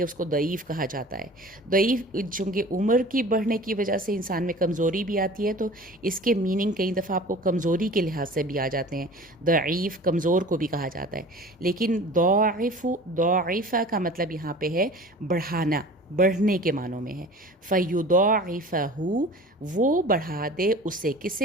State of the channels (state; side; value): normal; both; correlation 0.41